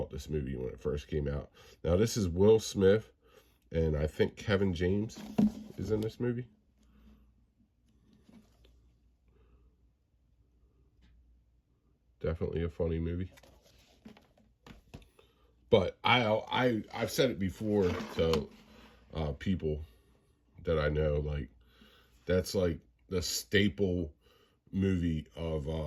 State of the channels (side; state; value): both; identical; correlation 1.00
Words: this movie when it first came out. Now this is Will Smith, and I think Kevin James is in this movie. Definitely a funny movie. But I've said it before to people that I know, like, that's like the staple movie of